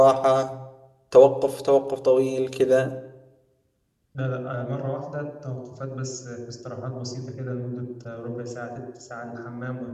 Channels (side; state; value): both; identical; correlation 1.00